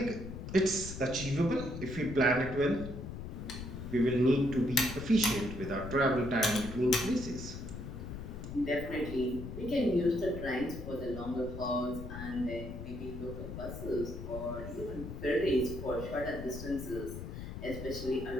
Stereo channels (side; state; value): left; noise; rumble, 8 dB below the sound